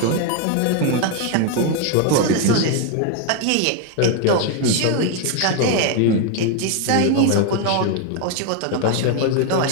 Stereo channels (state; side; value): different; both; correlation 0.01